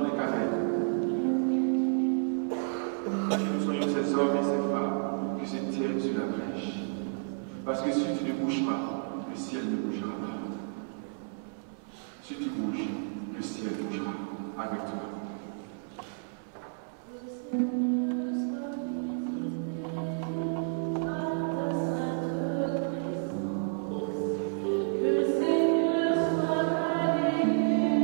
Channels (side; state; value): left; silent; 57 dB below the other